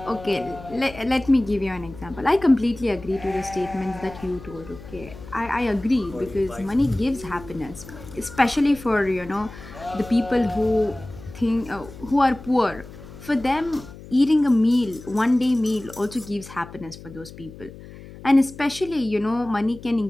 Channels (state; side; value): noise; left; hum, 16 dB below the sound